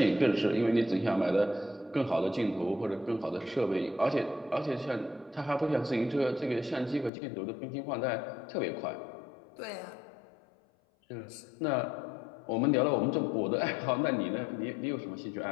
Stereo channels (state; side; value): drops out; right; at 7.1 s